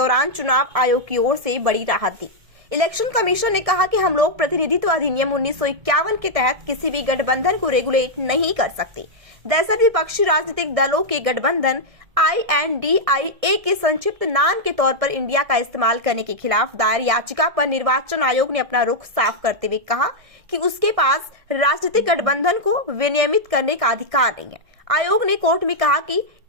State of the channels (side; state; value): left; late; 1.6 ms